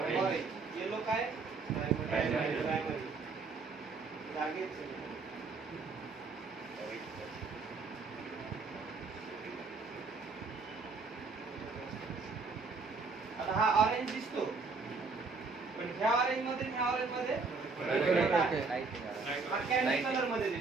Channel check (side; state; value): left; quieter; 4.4 dB